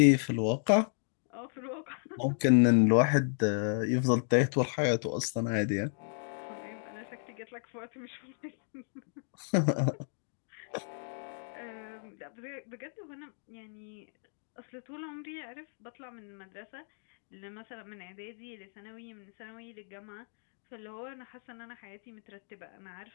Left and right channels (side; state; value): right; silent; digital silence